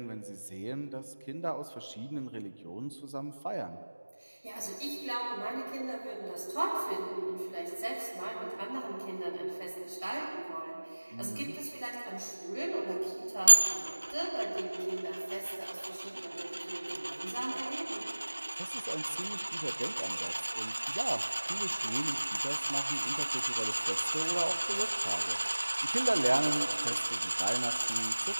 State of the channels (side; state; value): both; inverted; correlation -1.00